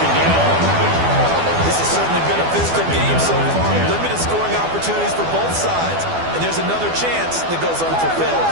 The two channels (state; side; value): late; left; 12 ms